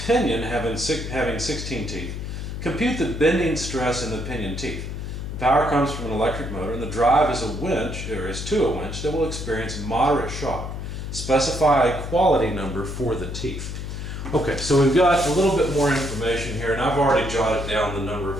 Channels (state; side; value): noise; left; hum, 6 dB below the sound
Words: pinion having 16 teeth, compute the bending stress in the pinion teeth. The power comes from an electric motor and the drive is a winch, or is to a winch, that will experience moderate shock. Specify a quality number for the teeth. Okay, so we've got a little bit more information here, and I've already jotted down the number